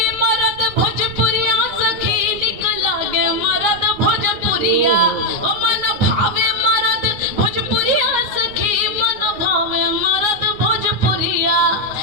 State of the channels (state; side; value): late; left; 9.7 ms